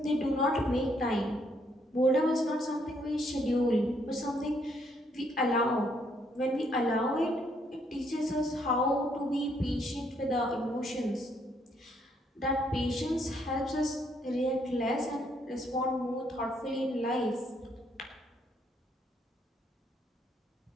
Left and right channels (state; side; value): normal; both; correlation 0.71